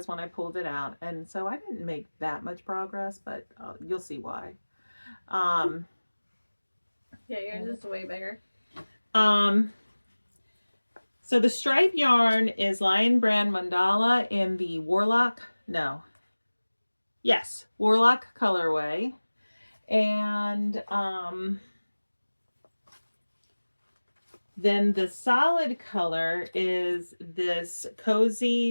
when I pulled it out. And so I didn't make that much progress, but you'll see why. Yeah, yours is way bigger. So the stripe yarn is Lion Brand Mandala in the Warlock colorway. And then the solid color is this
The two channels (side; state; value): both; inverted; correlation -1.00